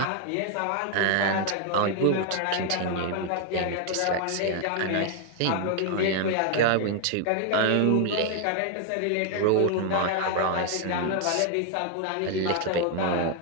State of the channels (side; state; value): both; different; correlation 0.00